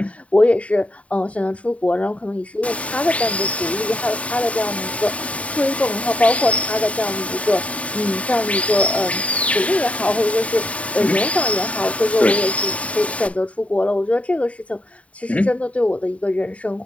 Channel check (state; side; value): late; right; 0.066 ms